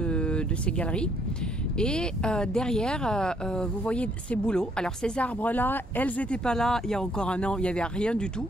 ces galeries. Et derrière, vous voyez ces bouleaux. Alors ces arbres-là, elles n'étaient pas là il y a encore un an, il n'y avait rien du tout.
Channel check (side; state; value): both; normal; correlation 0.67